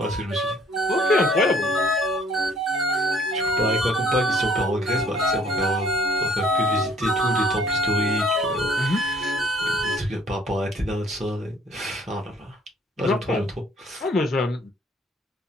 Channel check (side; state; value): both; normal; correlation 0.59